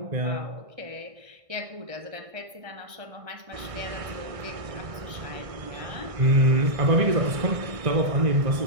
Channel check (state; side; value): late; left; 1.6 ms